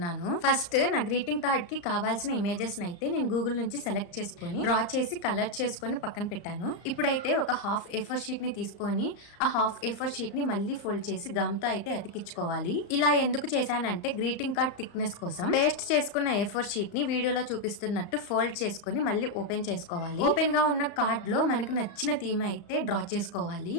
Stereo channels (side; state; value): right; late; 35 ms